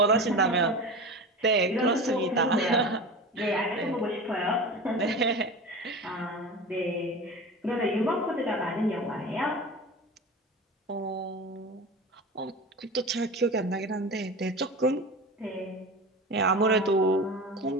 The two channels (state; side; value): normal; both; correlation 0.31